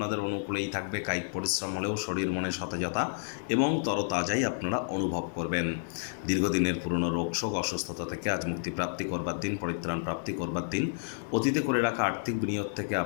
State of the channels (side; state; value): right; silent; 58 dB below the other